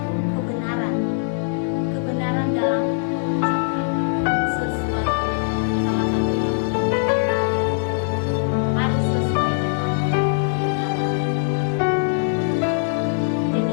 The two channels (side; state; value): right; silent; digital silence